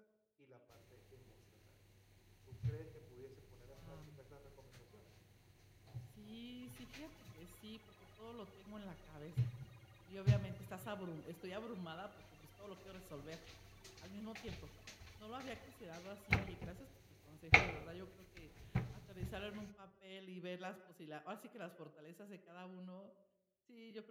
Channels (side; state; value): both; identical; correlation 1.00